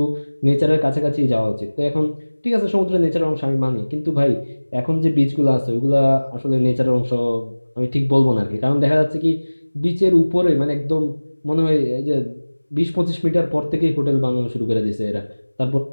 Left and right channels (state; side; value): inverted; both; correlation -1.00